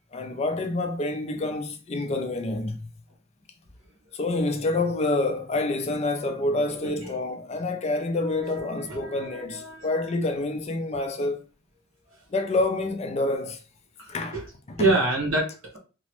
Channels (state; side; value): normal; both; correlation 0.34